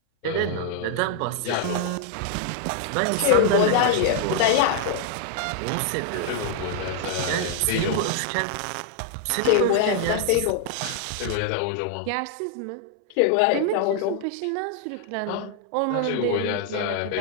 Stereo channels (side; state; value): both; different; correlation 0.00